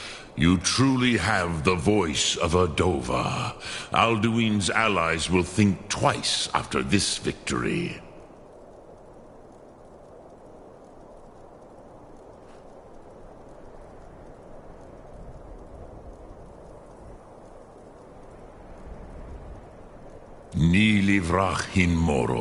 You truly have the voice of a Dova. Alduin's allies will think twice after this victory. Kneeling Vivrach in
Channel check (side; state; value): both; identical; correlation 1.00